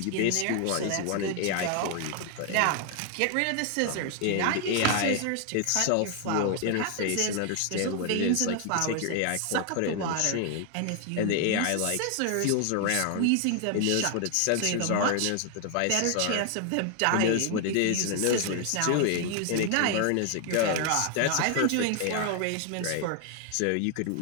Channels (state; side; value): different; both; correlation 0.00